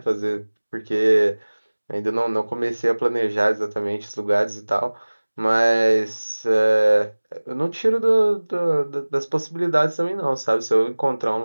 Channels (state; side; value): inverted; both; correlation -1.00